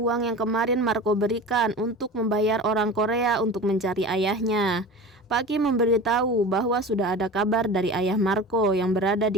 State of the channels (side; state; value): both; normal; correlation 0.34